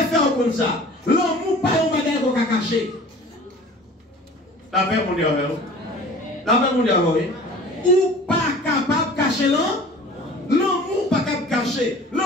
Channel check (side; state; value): both; normal; correlation 0.44